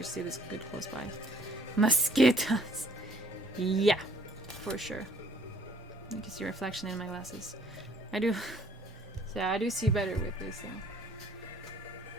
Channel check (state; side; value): normal; both; correlation 0.58